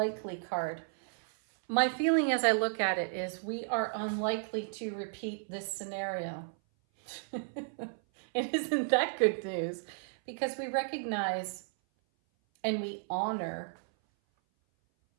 card. My feeling as I look at it is we are unlikely to repeat this scenario. And isn't that good news? Because we recognize and we honor.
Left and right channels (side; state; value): left; silent; 56 dB below the other